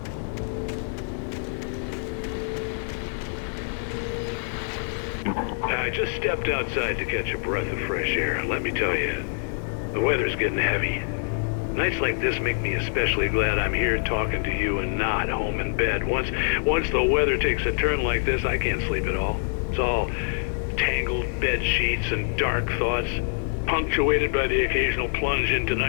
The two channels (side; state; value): right; silent; 61 dB below the other